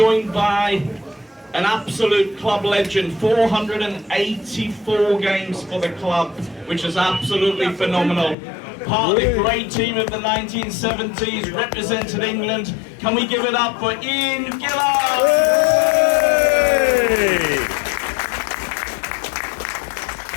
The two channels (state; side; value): drops out; right; at 8.3 s